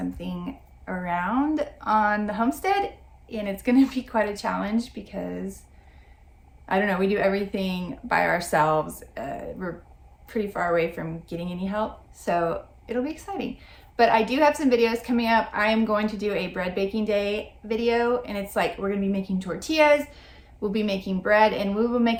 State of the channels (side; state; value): both; identical; correlation 1.00